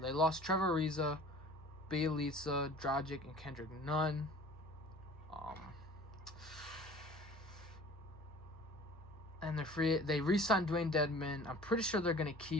lost Trevor Ariza. Bielitsa, Dragic, and Kendrick Nunn. And they re-signed Dwayne Dedman. I'm pretty sure they're going to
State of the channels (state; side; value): normal; both; correlation 0.46